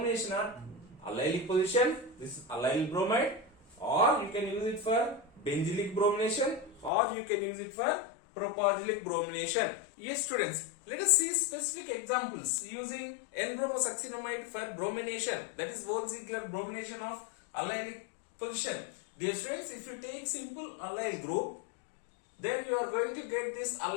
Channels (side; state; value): right; drops out; at 6.9 s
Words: at allylic position, this is allylic bromide, or you can use it for benzylic bromination, or you can use it for propargylic bromination. Yes students, let us see specific examples using N-Bromo Succinimide for bromination, that is Benzylic bromination of allylic position. Dear students, if you take simple allyl group, then you are going to get this